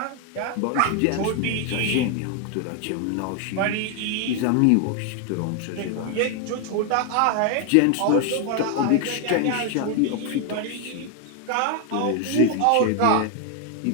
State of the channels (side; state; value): both; different; correlation 0.01